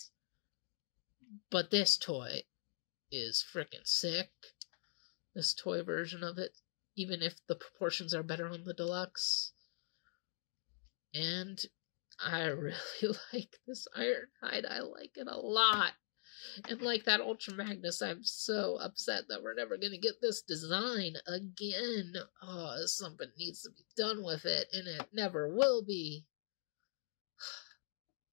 But this toy is freaking sick. This toy version of it, even if the proportions are better on the deluxe. And I really like this Ironhide. I like it a lot. And like that Ultra Magnus, I'm so upset that we're never going to get this design again. Oh, something needs to be done with it, and it never will be.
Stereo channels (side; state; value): right; silent; digital silence